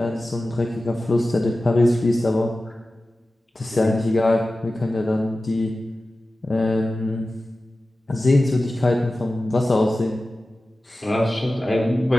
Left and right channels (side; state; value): both; normal; correlation 0.95